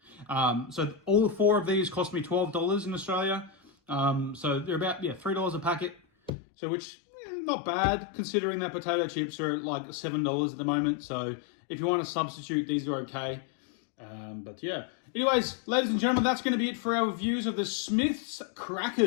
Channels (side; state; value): right; drops out; at 6.3 s